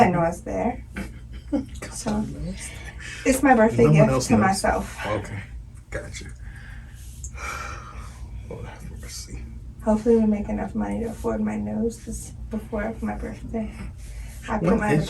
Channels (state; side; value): identical; both; correlation 1.00